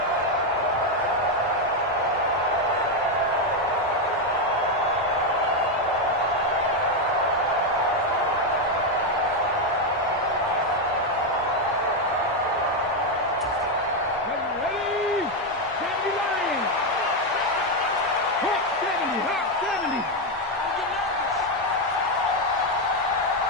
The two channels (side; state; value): both; normal; correlation 0.05